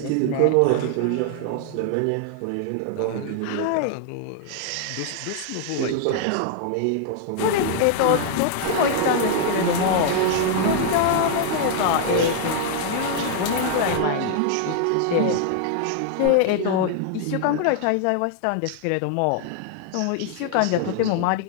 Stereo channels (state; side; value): different; both; correlation 0.00